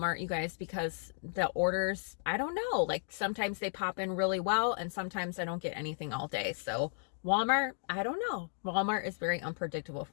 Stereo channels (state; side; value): silent; right; digital silence